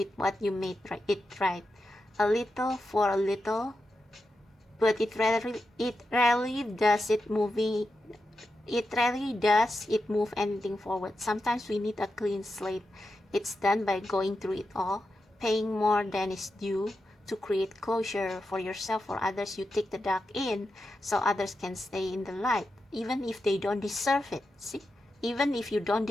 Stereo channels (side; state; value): both; normal; correlation 0.88